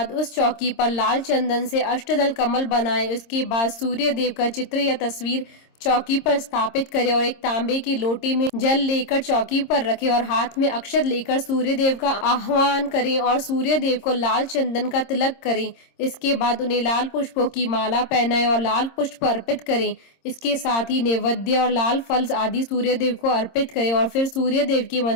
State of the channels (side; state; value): right; late; 26 ms